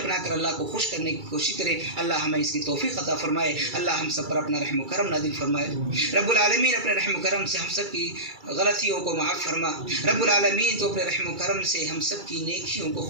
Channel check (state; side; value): late; left; 2.3 ms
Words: کر اللہ کو خوش کرنے کی کوشش کریں۔ اللہ ہمیں اس کی توفیق عطا فرمائے، اللہ ہم سب پر اپنا رحم و کرم نازل فرمائے۔ رب العالمین اپنے رحم و کرم سے ہم سب کی غلطیوں کو معاف فرما، رب العالمین تو اپنے رحم و کرم سے ہم سب کی نیکیوں کو